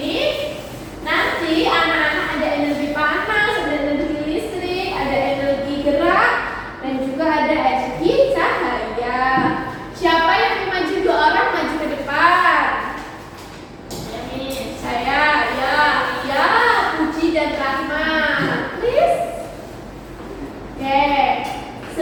nanti anak-anak ada energi panas, ada energi listrik, ada energi gerak, dan juga ada energi cahaya. Siapa yang mau maju? 2 orang maju ke depan. Saya, ya, Puji dan Rahma. Please. Oke,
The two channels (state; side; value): identical; both; correlation 1.00